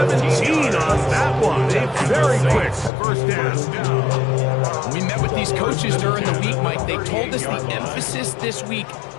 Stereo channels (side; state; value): right; drops out; at 2.9 s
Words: on that one. A very quick first down. We met with these coaches during the week, Mike. They told us the emphasis this week